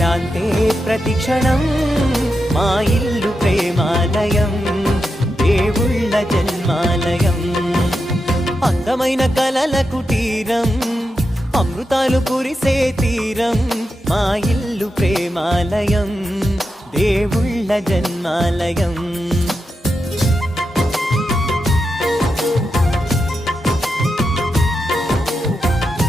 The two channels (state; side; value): normal; both; correlation 0.88